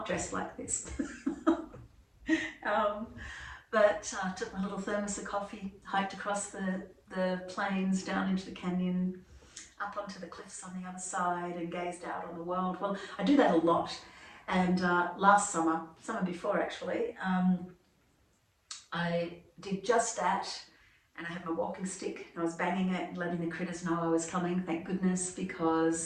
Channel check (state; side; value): identical; both; correlation 1.00